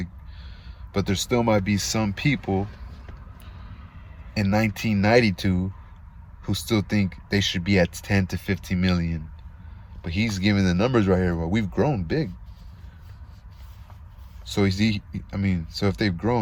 but there still might be some people in 1992 who still think they should be at 10 to 15 million. But he's giving the numbers right here. Well, we've grown big. So so if they've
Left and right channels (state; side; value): identical; both; correlation 1.00